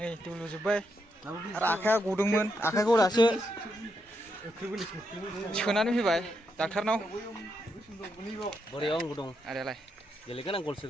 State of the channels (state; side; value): normal; both; correlation 0.81